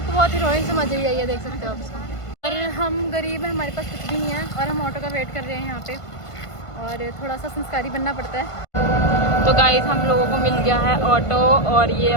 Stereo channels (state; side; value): late; right; 1.5 ms